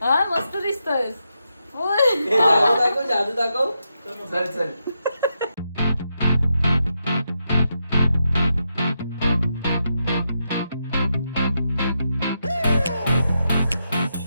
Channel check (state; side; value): inverted; both; correlation -0.85